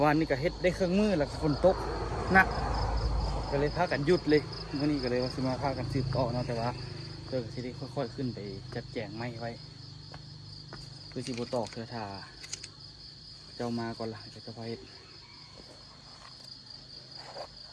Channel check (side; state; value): both; identical; correlation 1.00